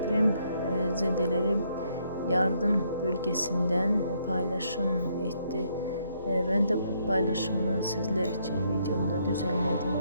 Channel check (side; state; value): both; inverted; correlation -0.72